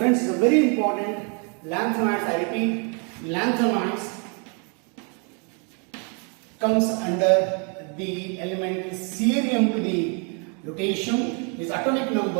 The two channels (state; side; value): quieter; left; 37.0 dB